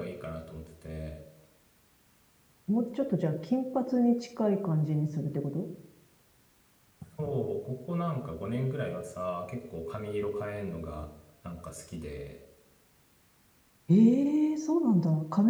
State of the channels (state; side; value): identical; both; correlation 1.00